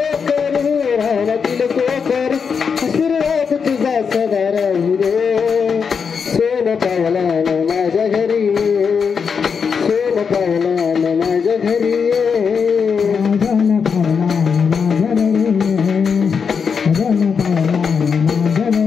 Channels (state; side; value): quieter; right; 6.1 dB